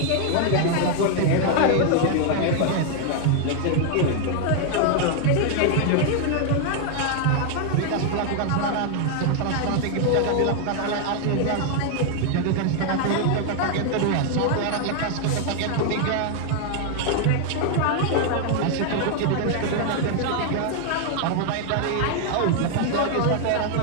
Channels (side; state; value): both; different; correlation 0.00